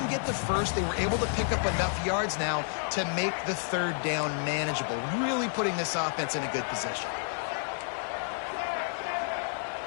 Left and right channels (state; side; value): silent; right; digital silence